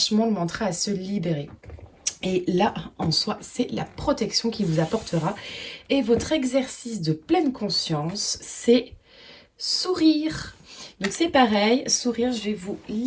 le mantra à se libérer. Et là, en soi, c'est la protection qui vous apportera. Et votre exercice de pleine conscience, c'est sourire. Donc c'est pareil, sourire, je vais vous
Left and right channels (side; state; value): both; identical; correlation 1.00